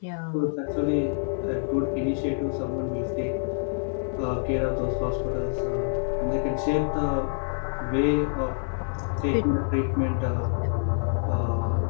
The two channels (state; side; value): silent; right; digital silence